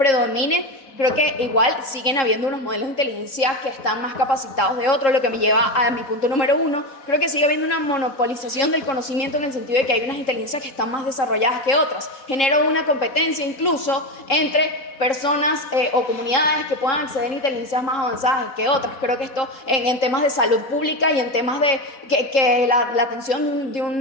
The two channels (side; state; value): right; late; 3.7 ms